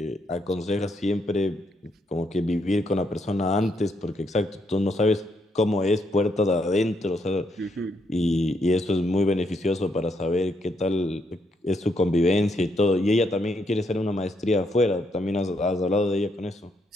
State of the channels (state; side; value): normal; both; correlation 0.76